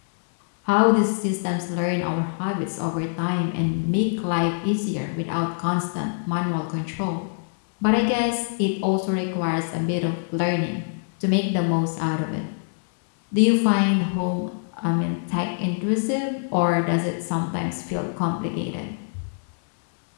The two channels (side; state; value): right; silent; 62 dB below the other